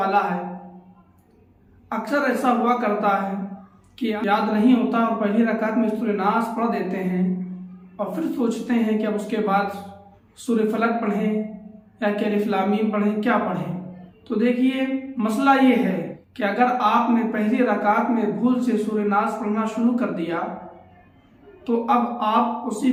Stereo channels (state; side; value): identical; both; correlation 1.00